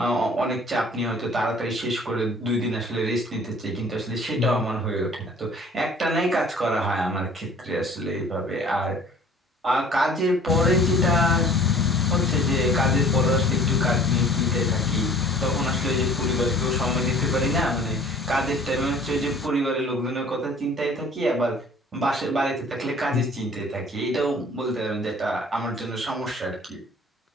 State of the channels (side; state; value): both; normal; correlation 0.51